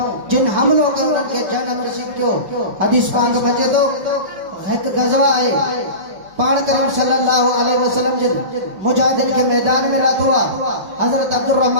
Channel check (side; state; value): left; late; 5.3 ms